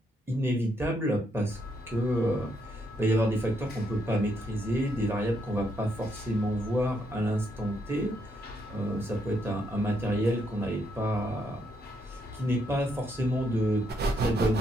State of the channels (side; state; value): both; normal; correlation 0.76